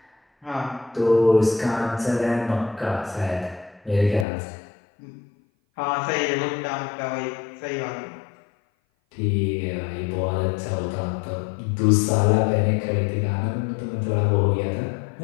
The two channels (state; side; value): drops out; right; at 4.2 s